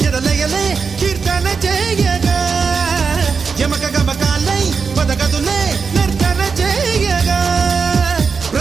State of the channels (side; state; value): left; quieter; 5.3 dB